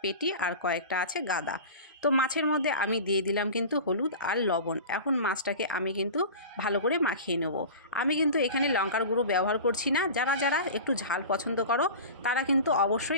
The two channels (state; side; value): inverted; both; correlation -0.34